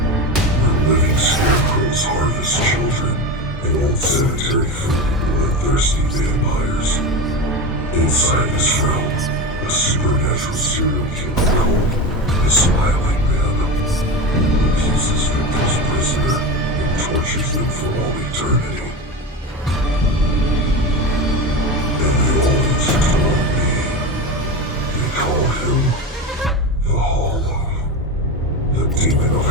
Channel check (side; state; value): both; normal; correlation 0.23